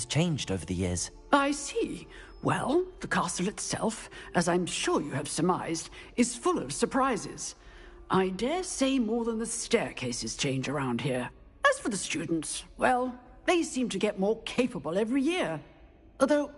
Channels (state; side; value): identical; both; correlation 1.00